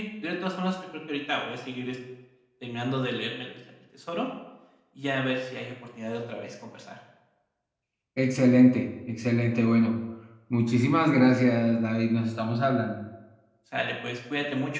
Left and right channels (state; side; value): identical; both; correlation 1.00